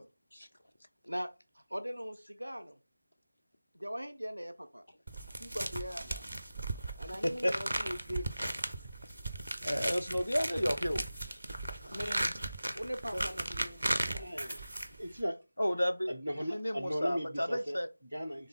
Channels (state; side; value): inverted; both; correlation -0.96